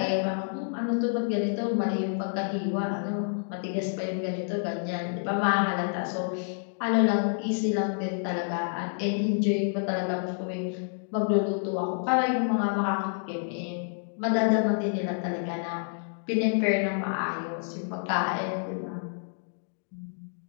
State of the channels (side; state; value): right; silent; digital silence